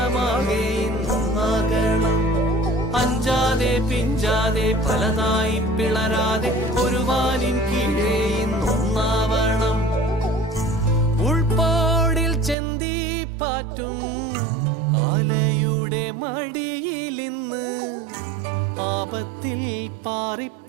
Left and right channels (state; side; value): drops out; left; at 12.6 s